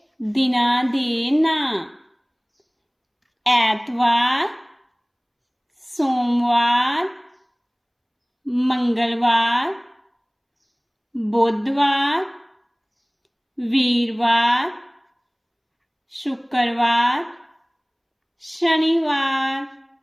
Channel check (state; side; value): identical; both; correlation 1.00